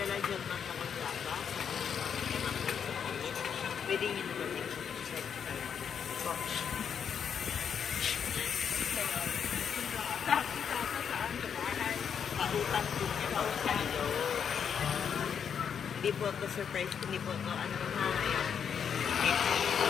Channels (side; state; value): right; quieter; 7.5 dB